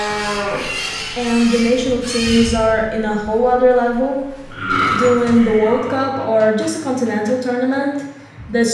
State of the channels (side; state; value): both; identical; correlation 1.00